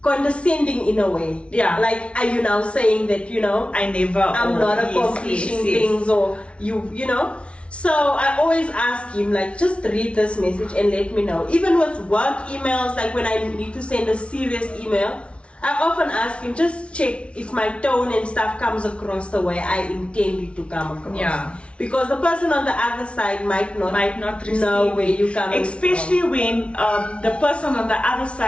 condescending in a way. Yeah. Like, are you now saying that, I'm not accomplishing things, or you know? So I always ask him, like, just read this message and let me know. Even with work emails, like when I need to send a serious email, I often ask him, just check if my tone and stuff comes across the way I intend it to come across. Yeah. Because the person on the other side might not know where you come from. Especially when the person on the other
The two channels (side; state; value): right; late; 0.060 ms